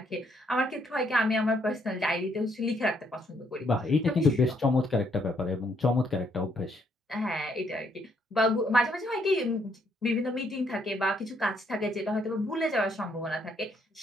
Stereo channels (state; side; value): normal; both; correlation 0.71